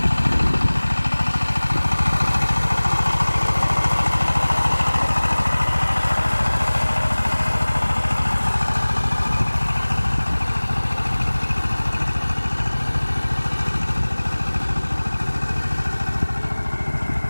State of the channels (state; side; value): inverted; both; correlation -1.00